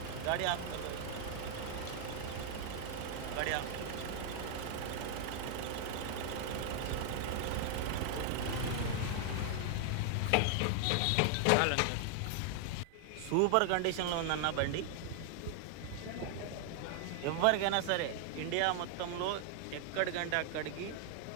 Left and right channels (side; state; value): both; different; correlation 0.00